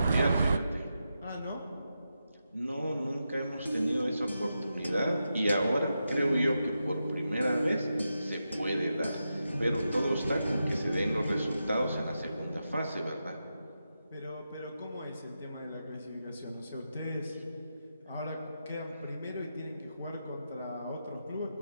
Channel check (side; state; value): both; inverted; correlation -0.88